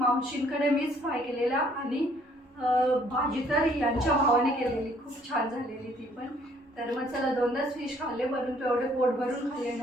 मीच फ्राय केलेला. आणि भाजी तर यांच्या भावाने केलेली, खूप छान झालेली ती पण. तर मग चला, 2च फिश खाल्ले, परंतु एवढे पोट भरून खाल्ले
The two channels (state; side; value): normal; both; correlation 0.62